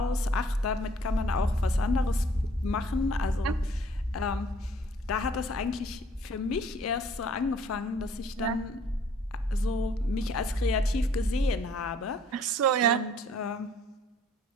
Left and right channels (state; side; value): normal; both; correlation 0.58